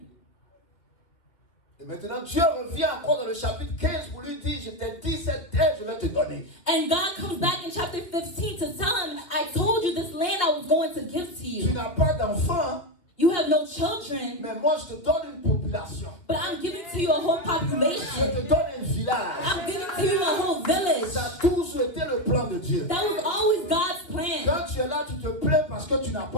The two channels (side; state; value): right; late; 2.8 ms